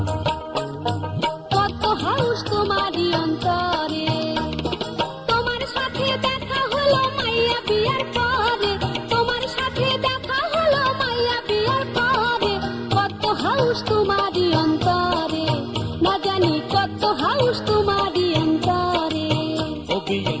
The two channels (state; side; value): identical; both; correlation 1.00